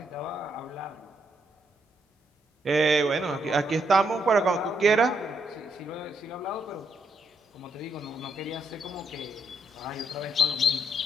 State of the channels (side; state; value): both; normal; correlation 0.76